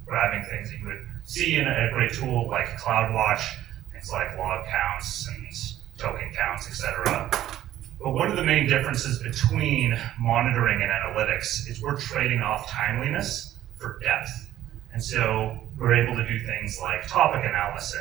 grabbing things that you would see in a great tool like CloudWatch, things like log counts and token counts, etc. But one of the main differences between monitoring and analytics is we're trading off timeliness for depth. And so we're able to do things like topic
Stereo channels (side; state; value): left; quieter; 12.8 dB